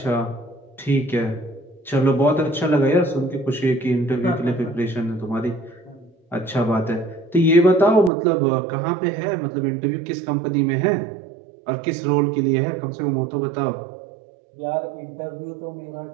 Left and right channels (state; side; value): drops out; left; at 8.1 s